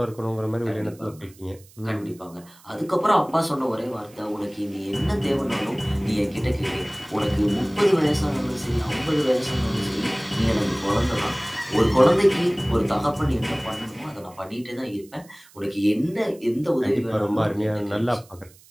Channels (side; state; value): right; noise; hiss, 26 dB below the sound